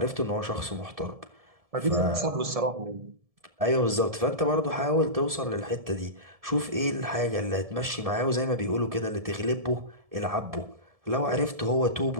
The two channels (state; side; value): late; left; 1.7 ms